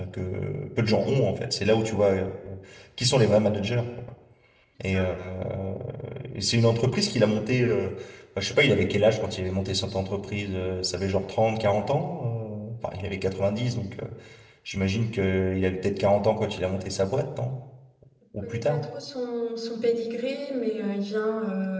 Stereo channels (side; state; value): both; identical; correlation 1.00